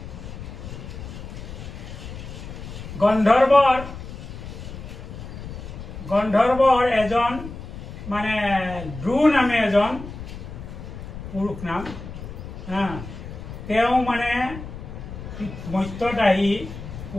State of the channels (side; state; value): left; noise; rumble, 11 dB below the sound